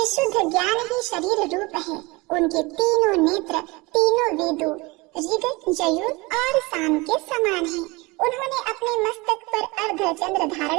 ज्ञान ही शरीर रूप है, उनके तीनों नेत्र तीनों वेदों ऋग, यजुर और साम के समान हैं। उन्होंने अपने मस्तक पर अर्ध चंद्र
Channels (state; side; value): quieter; left; 24.4 dB